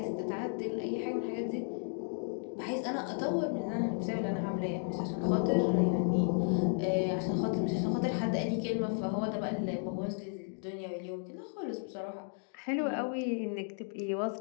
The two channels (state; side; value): silent; right; 55 dB below the other